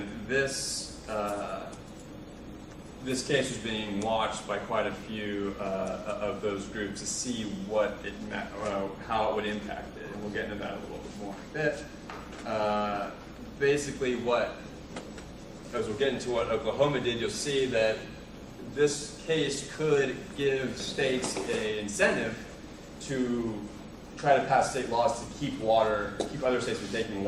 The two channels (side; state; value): both; identical; correlation 1.00